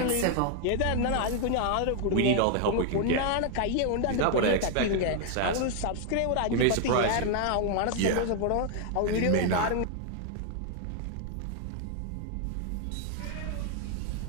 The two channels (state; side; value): different; both; correlation 0.00